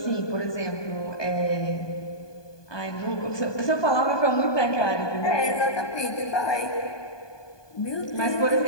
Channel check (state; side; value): late; right; 1.2 ms